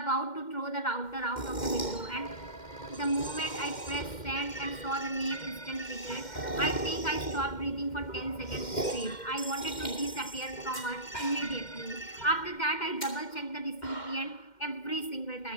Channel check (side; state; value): right; late; 2.1 ms